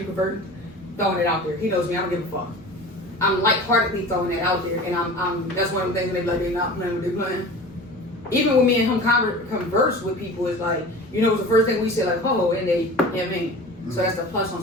converted, throwing it out there. He knows me, I don't give a fuck. I'm lightheartedly throwing it out there, and I'm that's one of the things they like, they're not playing what they're playing. Even when me and him converse with people, it's like, it's the first thing we say, like, oh, and they, I mean. So that's the plus on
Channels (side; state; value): both; normal; correlation 0.37